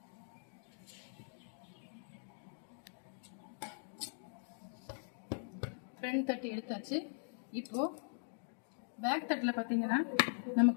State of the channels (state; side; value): silent; right; digital silence